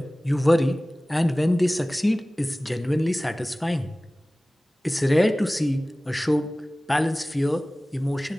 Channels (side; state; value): both; normal; correlation 0.98